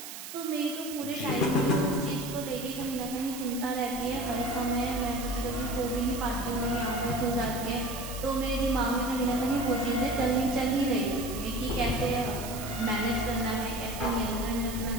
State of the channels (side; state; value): right; noise; hiss, 10 dB below the sound